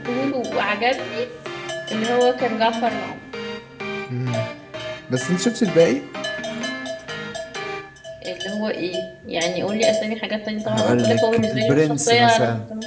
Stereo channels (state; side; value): identical; both; correlation 1.00